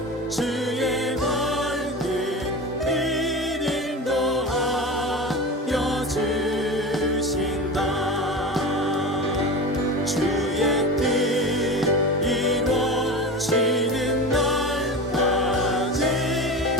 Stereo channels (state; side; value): normal; both; correlation 0.28